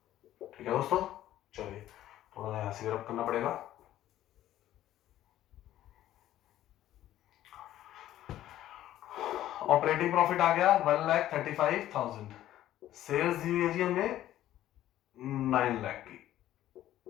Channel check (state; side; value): quieter; right; 13.2 dB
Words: ठीक है दोस्तों। चलिए थोड़ा सा यहां से रब करना पड़ेगा। ऑपरेटिंग प्रॉफिट आ गया 1,35,000, सेल्स दी हुई है जी हमें 9 लाख की